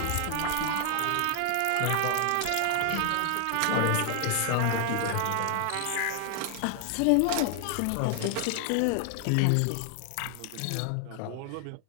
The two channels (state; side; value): different; both; correlation 0.00